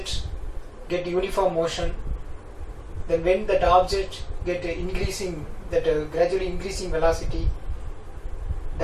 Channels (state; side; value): identical; both; correlation 1.00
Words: get uniform motion, then when that object get gradually increasing velocity,